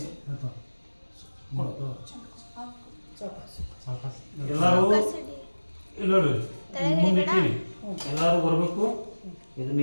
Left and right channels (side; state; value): both; inverted; correlation -1.00